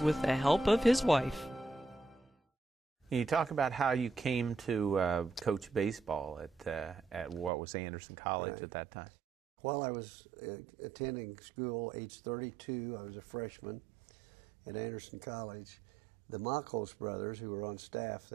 with the help of his wife. Can you talk about how you came to coach baseball at what was Anderson College at that time? While I was attending school, age 32, I was a freshman at Anderson College. The Makos brothers, who were on staff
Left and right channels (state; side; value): drops out; left; at 7.5 s